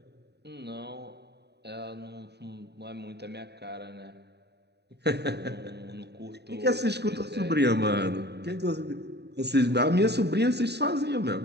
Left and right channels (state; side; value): late; left; 0.48 ms